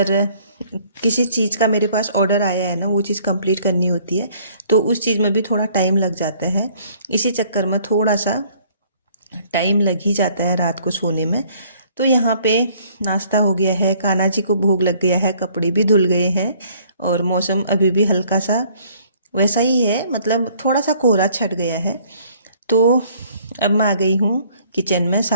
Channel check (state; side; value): inverted; both; correlation -0.59